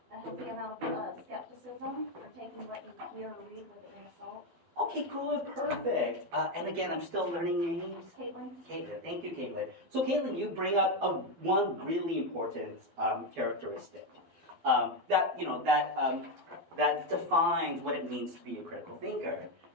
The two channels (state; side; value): late; left; 12 ms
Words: A healthy amount of skepticism, or taking what you hear or read with a grain of salt. Okay, good, perfect. And again, I'm still learning names. Caitlin? Caitlin, thank you, Caitlin. So Caitlin, you bring up one really important characteristic that defines what it means to be a critical thinker.